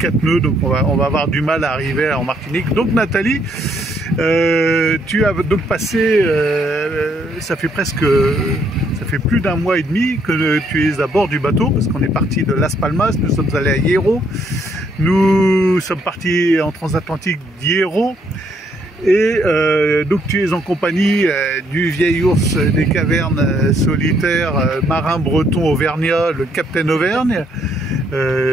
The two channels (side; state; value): both; normal; correlation 0.70